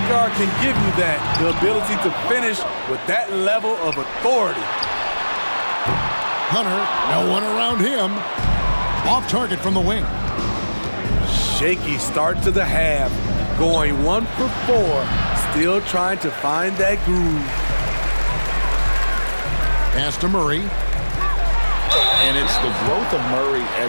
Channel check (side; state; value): both; inverted; correlation -1.00